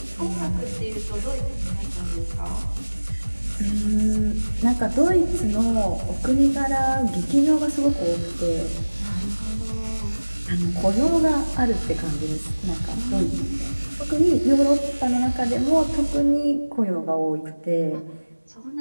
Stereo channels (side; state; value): both; inverted; correlation -1.00